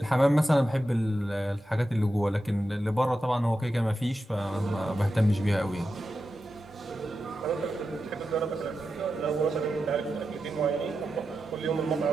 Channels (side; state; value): both; normal; correlation 0.90